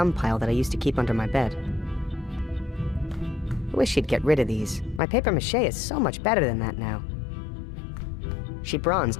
pile that I used to keep under my bed. I wish she'd get rid of these. My paper mache is so much better than that now. She bronzed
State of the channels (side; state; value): right; drops out; at 5.0 s